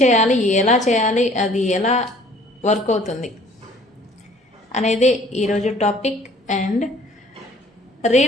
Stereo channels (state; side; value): normal; both; correlation 0.55